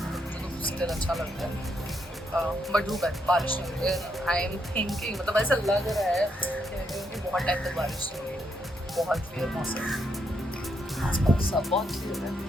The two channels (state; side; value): normal; both; correlation 0.77